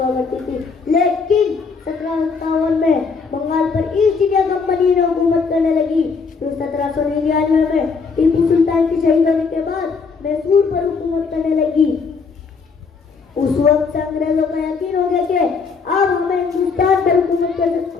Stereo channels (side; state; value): right; quieter; 5.0 dB